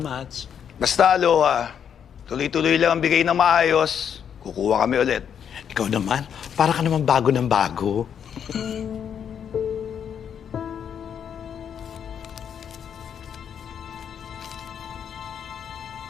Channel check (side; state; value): right; quieter; 8.2 dB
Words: Basta, Aloha. Tuloy-tuloy lang ang bigay ng maayos. Kukuha kami ulit. Ikaw naman, para ka naman bago ng bago.